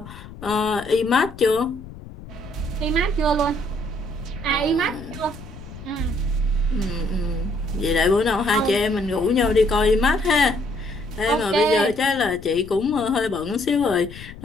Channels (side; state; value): left; noise; rumble, 15 dB below the sound